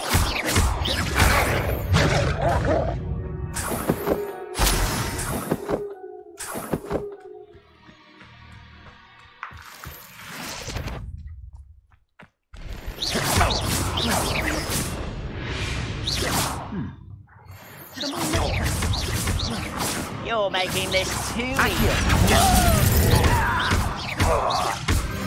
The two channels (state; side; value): identical; both; correlation 1.00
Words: You're making this too